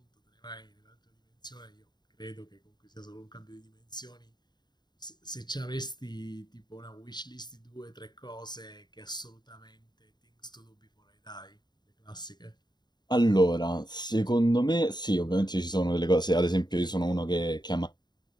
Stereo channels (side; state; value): right; late; 0.21 ms